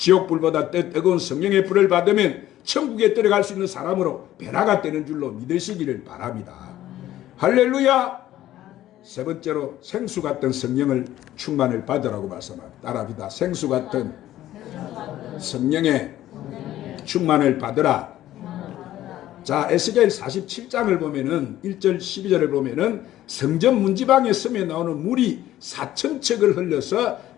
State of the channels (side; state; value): right; quieter; 13.7 dB